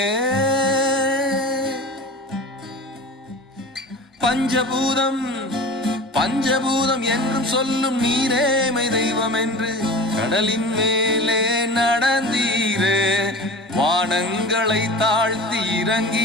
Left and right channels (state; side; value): normal; both; correlation 0.35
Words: பஞ்சபூதம் என்றும் சொல்லும் நீரேமை தெய்வம் என்று கடலின் மேலே நடந்தீரே. வானங்களை தாழ்த்தி